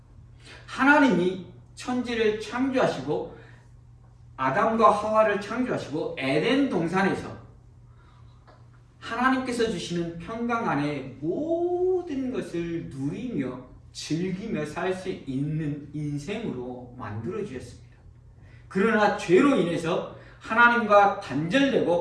하나님이 천지를 창조하시고 아담과 하와를 창조하시고 에덴 동산에서 하나님께서 주시는 평강 안에 모든 것을 누리며 즐기며 살 수 있는 인생으로 만들어 주셨습니다. 그러나 죄로 인해서 하나님과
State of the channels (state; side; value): identical; both; correlation 1.00